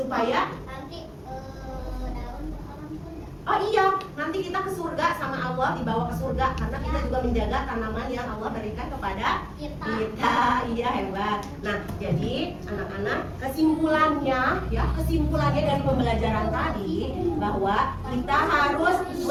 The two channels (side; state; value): both; identical; correlation 1.00